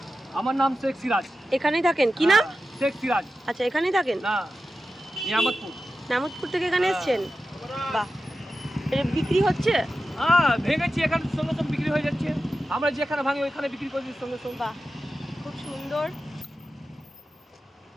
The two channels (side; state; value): both; normal; correlation 0.92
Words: আমার নাম শেখ সিরাজ। এখানেই থাকেন? কি নাম? শেখ সিরাজ। আচ্ছা, এখানেই থাকেন? না, নিয়ামতপুর। নামতপুর থেকে এখানে এসেছেন? বাহ, এটা বিক্রি হচ্ছে? হ্যাঁ, ভেঙেছি এখানে সঙ্গে সঙ্গে বিক্রি হয়ে যাচ্ছে। আমরা যেখানে ভাঙি ওইখানে বিক্রি করে দিই সঙ্গে সঙ্গে। বাহ, খুব সুন্দর।